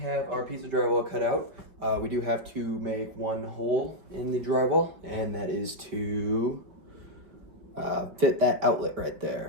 our piece of drywall cut out, we do have to make one hole in the drywall, and that is to fit that outlet right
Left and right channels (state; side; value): late; left; 5.0 ms